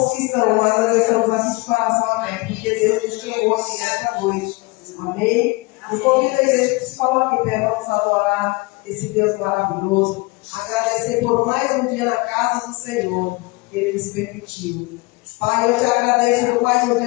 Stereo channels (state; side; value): quieter; right; 25.2 dB